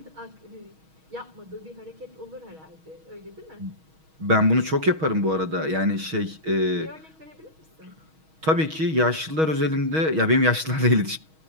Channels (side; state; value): left; late; 6.3 ms